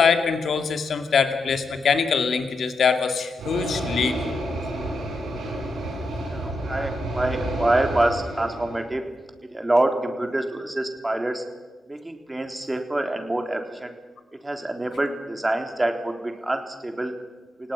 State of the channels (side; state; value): both; normal; correlation 0.86